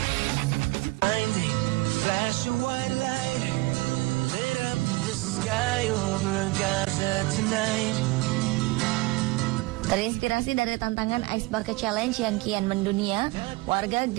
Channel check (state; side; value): quieter; left; 23.1 dB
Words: Terinspirasi dari tantangan Ice Bucket Challenge yang kian mendunia, warga